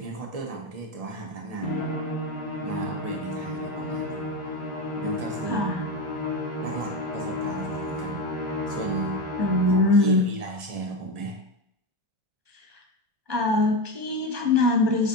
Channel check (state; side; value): late; left; 1.7 ms